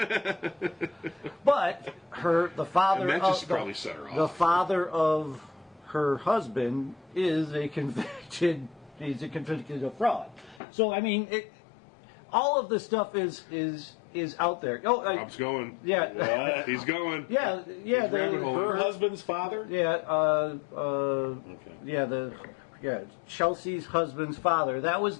But the father And that of just probably set her off. the father of her husband is a convicted. He's a convicted fraud. So I mean, all of this stuff is out there. Oh, Rob's going. yeah, He's going. yeah. He's rabbit hole. Her husband's father? Yeah, Okay. Chelsea's husband's father. That was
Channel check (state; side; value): drops out; right; at 10.6 s